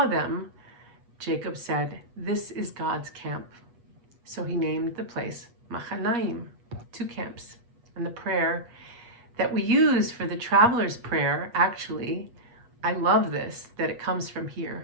them, Jacob said, "This is God's camp." So he named the place Machanaim, 2 camps. And the prayer that we use for the traveler's prayer, actually, I love this, that it comes from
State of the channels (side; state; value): left; late; 8.3 ms